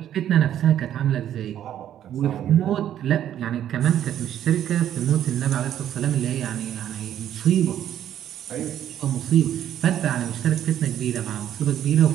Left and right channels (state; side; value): quieter; left; 10.8 dB